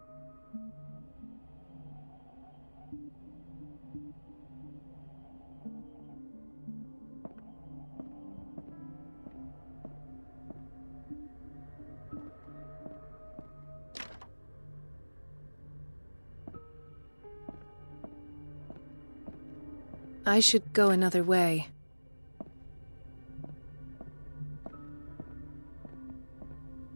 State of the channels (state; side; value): inverted; both; correlation -1.00